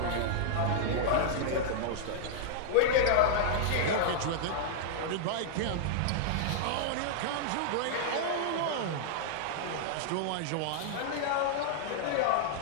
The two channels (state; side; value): different; both; correlation -0.01